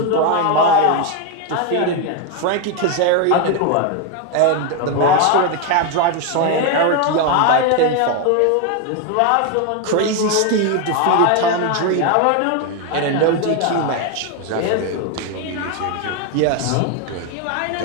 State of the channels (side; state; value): both; different; correlation 0.01